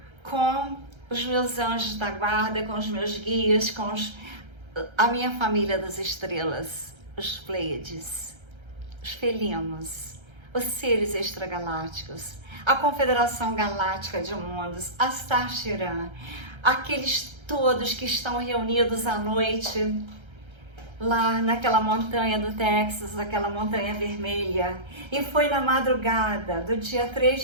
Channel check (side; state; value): left; late; 1.3 ms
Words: com os meus anjos da guarda, com os meus guias, com a minha família das estrelas, os Pleiades, os felinos, os seres extragalácticos, a Confederação Galáctica de Mundos, a Star Chiran, aqueles todos que estão reunidos à noite lá naquela montanha do Texas, aquela montanha vermelha. E foi na madrugada do dia 3